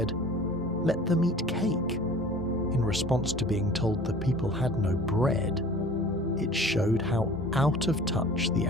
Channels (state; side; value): normal; both; correlation 0.45